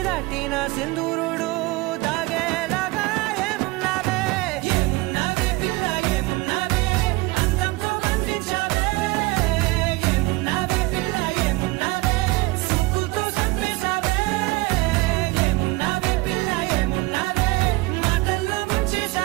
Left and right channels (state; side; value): quieter; left; 22.1 dB